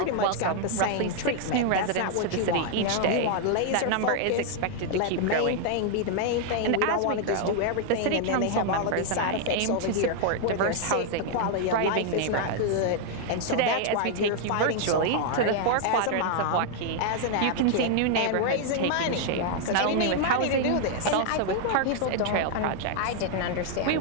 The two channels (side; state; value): both; different; correlation 0.00